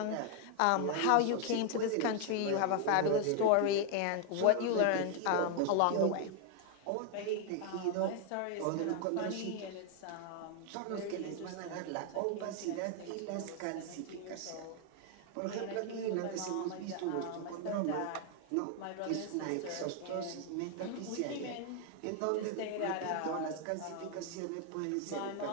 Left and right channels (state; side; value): different; both; correlation 0.00